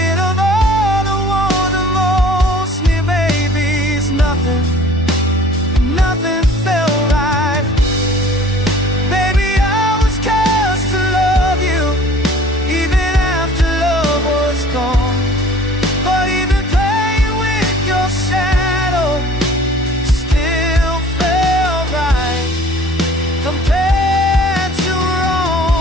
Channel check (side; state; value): both; normal; correlation 0.50